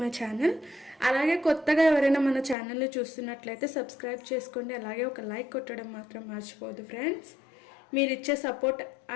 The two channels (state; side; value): drops out; right; at 2.6 s